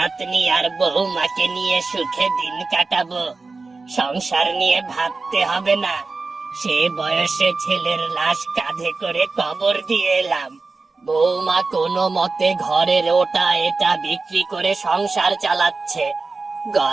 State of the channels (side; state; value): left; quieter; 3.9 dB